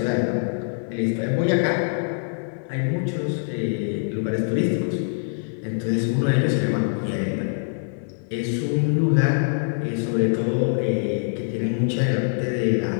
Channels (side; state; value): right; silent; 63 dB below the other